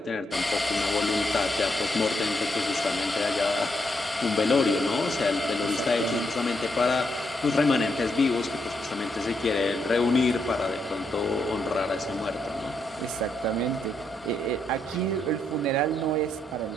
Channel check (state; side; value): normal; both; correlation 0.79